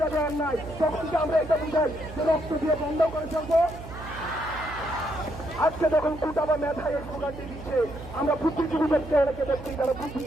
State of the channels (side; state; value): right; noise; hum, 13 dB below the sound